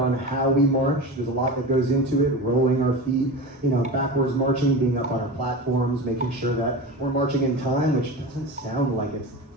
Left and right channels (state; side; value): normal; both; correlation 0.27